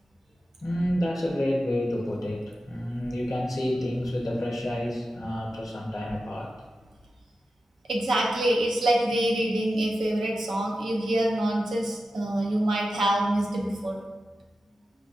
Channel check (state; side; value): normal; both; correlation 0.92